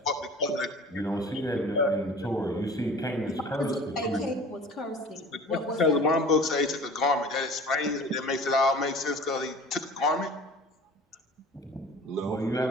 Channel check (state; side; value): normal; both; correlation 0.43